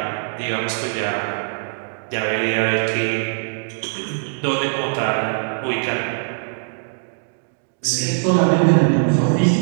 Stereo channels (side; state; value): left; silent; digital silence